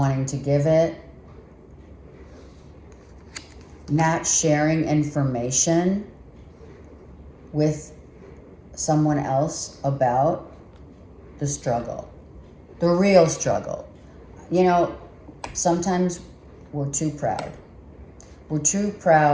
to give it, not sharing information with someone else about the struggle, the real struggle. You know, sometimes we're too proud. We're too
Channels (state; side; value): identical; both; correlation 1.00